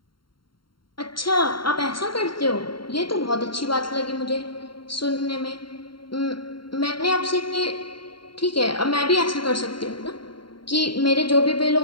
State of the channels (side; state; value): right; late; 0.73 ms